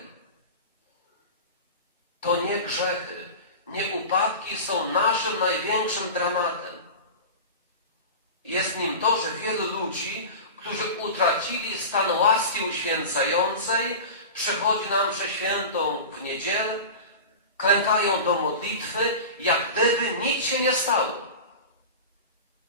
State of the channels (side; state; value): both; inverted; correlation -0.30